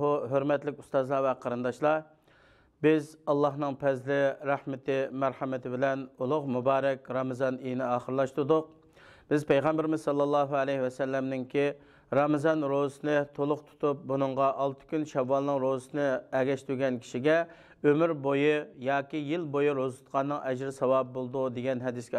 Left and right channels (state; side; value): identical; both; correlation 1.00